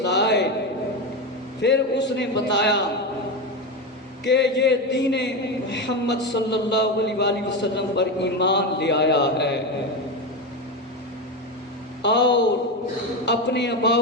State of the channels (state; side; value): normal; both; correlation 0.16